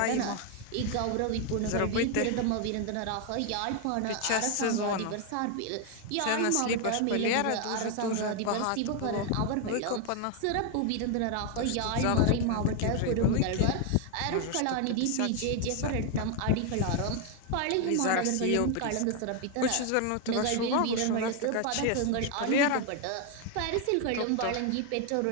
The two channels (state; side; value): different; both; correlation 0.01